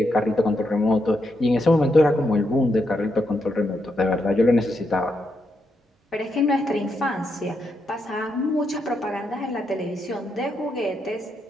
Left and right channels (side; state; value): both; normal; correlation 0.81